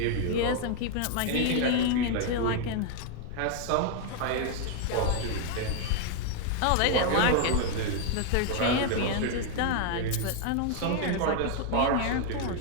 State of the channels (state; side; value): different; both; correlation 0.00